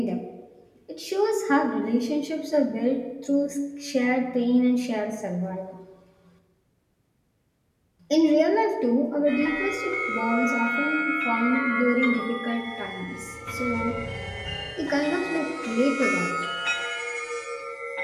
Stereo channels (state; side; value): identical; both; correlation 1.00